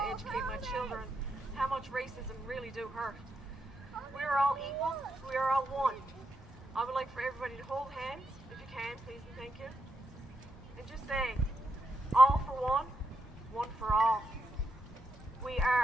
to educate my children how much racism really do hurt. We are all equal. We are all one. I would like for everybody to hold hands, if you can, please and thank you. And just say, all for one, one for all. We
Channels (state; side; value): normal; both; correlation 0.82